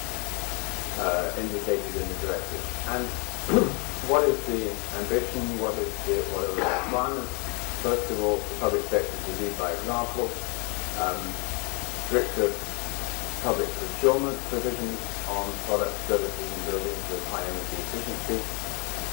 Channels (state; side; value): quieter; right; 33.0 dB